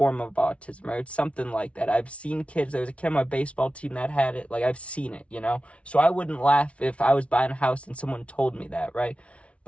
of autism, right? It's something like that. I've seen kids. There was a kid on my baseball team that had it. Like, I've seen it, you know? So I wouldn't laugh if I was buying a house and someone told me that, right?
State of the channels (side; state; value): right; late; 0.062 ms